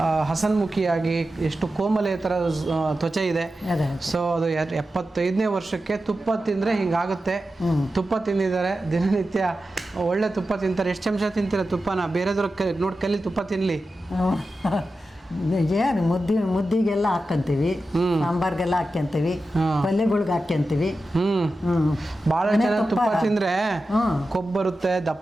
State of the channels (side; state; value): both; normal; correlation 0.92